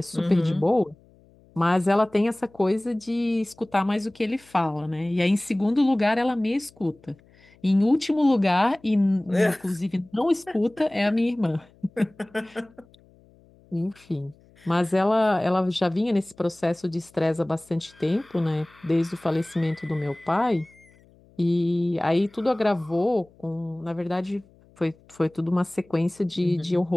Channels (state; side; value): noise; left; hum, 29 dB below the sound